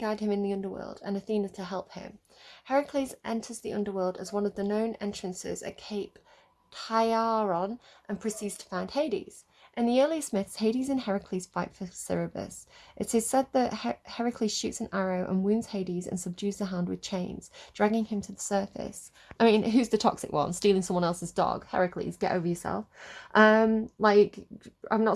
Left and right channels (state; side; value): identical; both; correlation 1.00